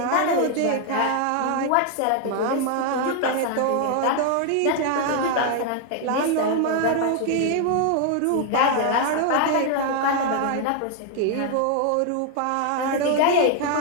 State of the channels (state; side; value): different; both; correlation 0.00